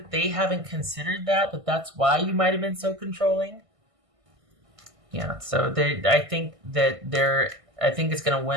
they haven't considered that's why you might have been so controlling. Yeah. So I think it's going to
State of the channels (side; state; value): left; late; 1.5 ms